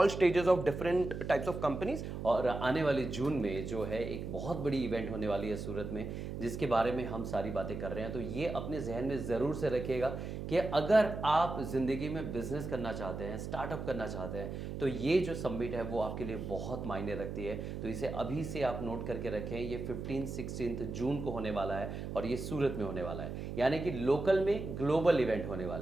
stages of different types of companies. और आने वाली जून में जो है एक बहुत बड़ी event होने वाली है सूरत में, जिसके बारे में हम सारी बातें कर रहे हैं। तो ये अपने जहन में ज़रूर से रखिएगा कि अगर आप ज़िंदगी में बिजनेस करना चाहते हैं, स्टार्टअप करना चाहते हैं, तो ये जो समिट है वो आपके लिए बहुत मायने रखती है। तो इसे अभी से आप नोट करके रखें, ये 15-16 जून को होने वाला है और ये सूरत में होने वाला है, यानी कि लोकल में ग्लोबल इवेंट होने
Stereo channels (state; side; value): noise; right; hum, 6 dB below the sound